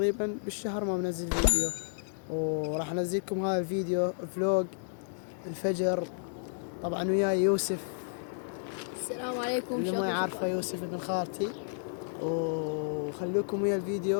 بالشهر ما منزل فيديو، وراح أنزلكم هذا الفيديو فلوج الفجر. طبعا وياي يوسف، السلام عليكم. اللي ما يعرفه يوسف ابن خالتي. وخلوكم ويا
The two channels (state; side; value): silent; right; digital silence